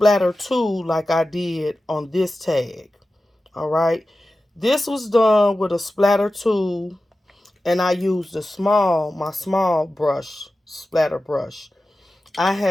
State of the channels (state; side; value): normal; both; correlation 0.94